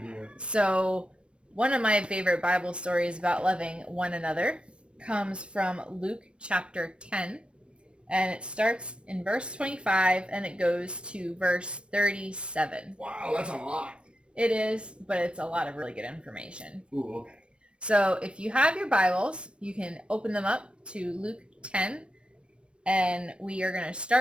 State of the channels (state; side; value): late; left; 0.057 ms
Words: So, one of my favorite Bible stories about loving one another comes from Luke chapter 10, and it starts in verse 25 and it goes to verse 37. Wow, that's a lot. It is, but it's a lot of really good information. Ooh, okay. So if you have your Bibles, you can open them up to Luke 10, and we are going to